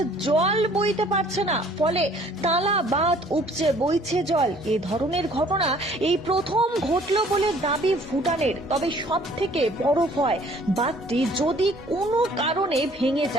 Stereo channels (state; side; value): normal; both; correlation 0.56